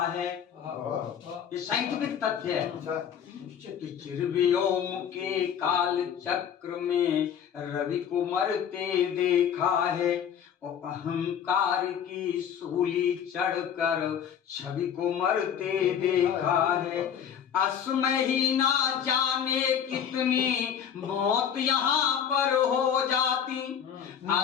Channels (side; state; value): right; quieter; 8.4 dB